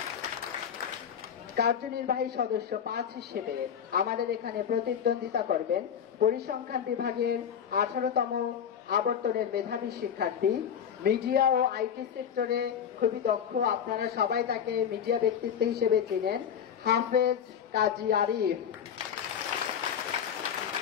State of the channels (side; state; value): right; quieter; 8.2 dB